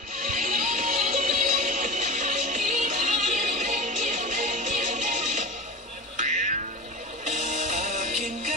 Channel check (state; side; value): normal; both; correlation 0.30